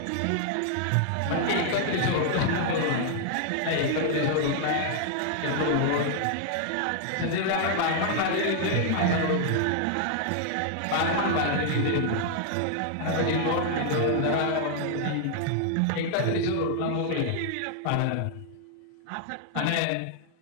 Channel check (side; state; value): both; different; correlation 0.00